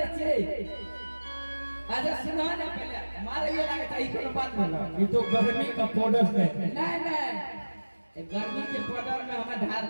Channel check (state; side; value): inverted; both; correlation -1.00